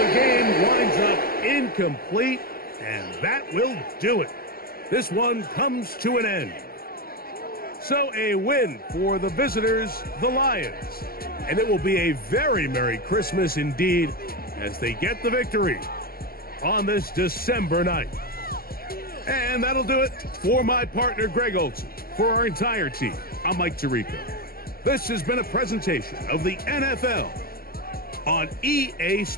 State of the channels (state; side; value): late; right; 0.44 ms